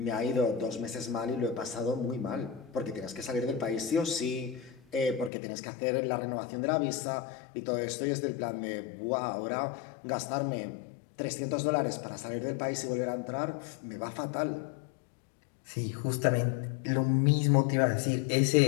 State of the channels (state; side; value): drops out; right; at 5.3 s